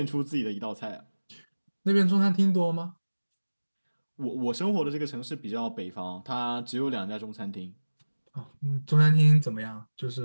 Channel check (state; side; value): inverted; both; correlation -1.00